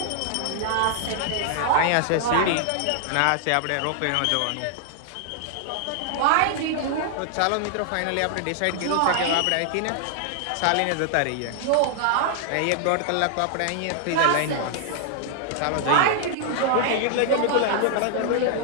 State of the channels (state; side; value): different; both; correlation -0.01